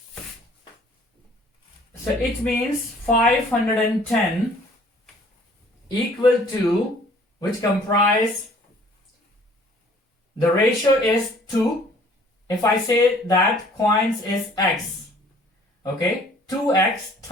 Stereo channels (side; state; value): both; normal; correlation 0.55